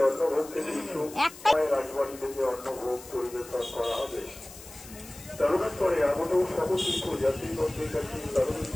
একটাই রাজবাড়ি থেকে অন্নভোগ পরিবেশন করা হবে। তারকেশ্বরে এমনও সহশিল্প যাত্রীদের কাছে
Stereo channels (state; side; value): noise; left; hiss, 17 dB below the sound